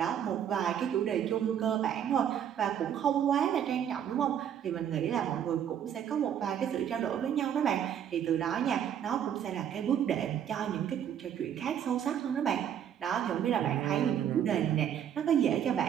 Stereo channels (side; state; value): left; quieter; 9.3 dB